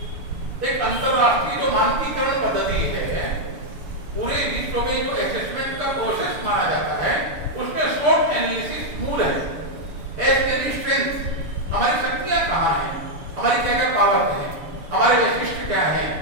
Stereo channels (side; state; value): left; late; 6.8 ms